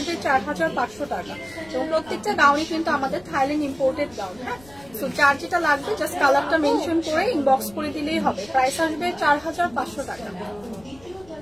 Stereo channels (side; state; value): left; noise; rumble, 25 dB below the sound